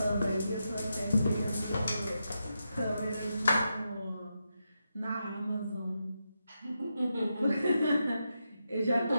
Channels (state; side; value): inverted; both; correlation -0.86